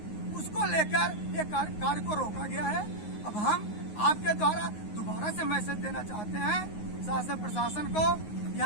उसको लेकर ये कार्य को रोका गया है। अब हम आपके द्वारा दोबारा से मैसेज देना चाहते हैं शासन प्रशासन को,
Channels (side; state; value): right; late; 9.6 ms